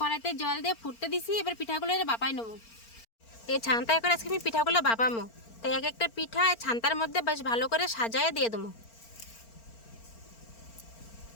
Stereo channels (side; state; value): right; late; 4.4 ms